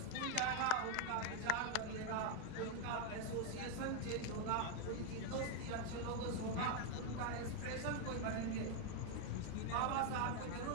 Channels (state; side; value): different; both; correlation 0.01